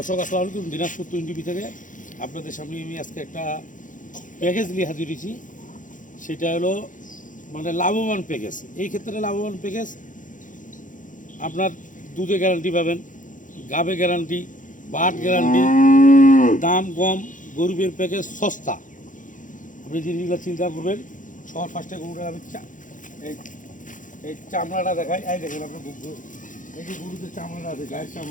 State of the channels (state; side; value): late; right; 0.38 ms